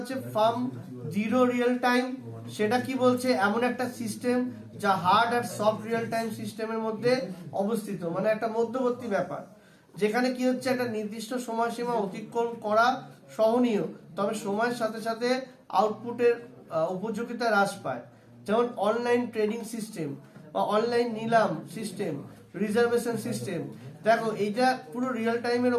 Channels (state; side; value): identical; both; correlation 1.00